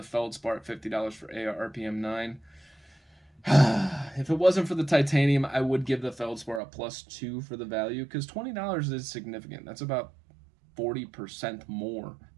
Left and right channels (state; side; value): drops out; left; at 6.6 s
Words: Feldspar at $50 for AR-RPM 9. If it wasn't for the titanium, I would give the Feldspar a +2 for the value, because $20 is significant. That's about 40% more